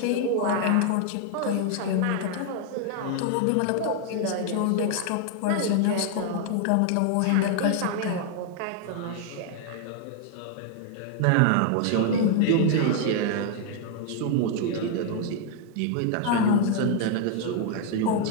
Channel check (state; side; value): different; both; correlation 0.00